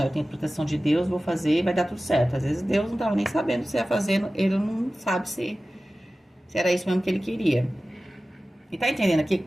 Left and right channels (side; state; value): both; normal; correlation 0.96